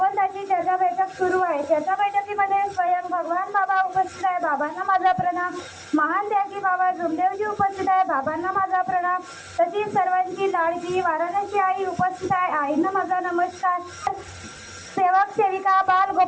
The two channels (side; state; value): both; identical; correlation 1.00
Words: चर्चा बैठक सुरू आहे। चर्चा बैठकीमध्ये स्वयं भगवान बाबा उपस्थित आहे, बाबांना माझा प्रणाम। महान त्यागी बाबा जुमदेवजी उपस्थित आहे, बाबांना माझा प्रणाम। तशीच सर्वांची लाडकी वाराणसी आई उपस्थित आहे, आईंना माझा नमस्कार। सेवक सेविका बाल